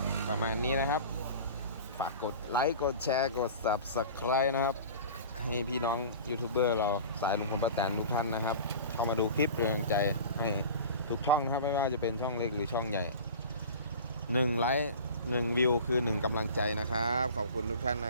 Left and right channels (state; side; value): inverted; both; correlation -0.38